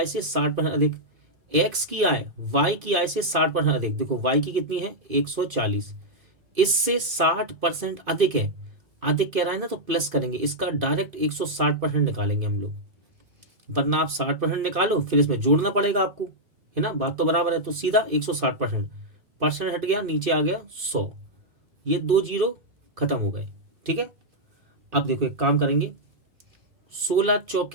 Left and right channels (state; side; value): late; left; 2.5 ms